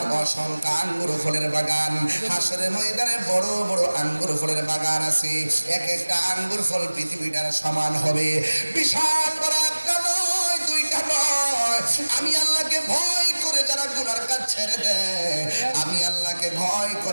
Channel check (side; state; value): both; inverted; correlation -1.00